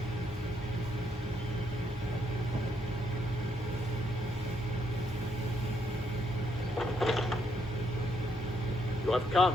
You have come.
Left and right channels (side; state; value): both; normal; correlation 0.74